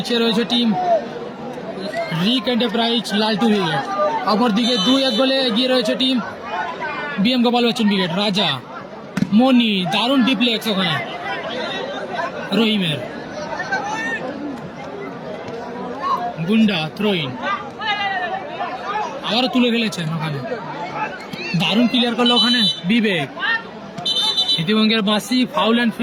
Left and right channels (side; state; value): both; identical; correlation 1.00